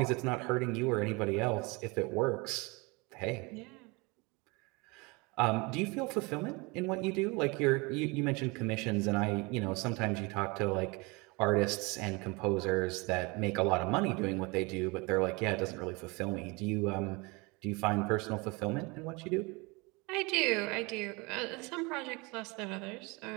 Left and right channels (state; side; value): quieter; left; 27.0 dB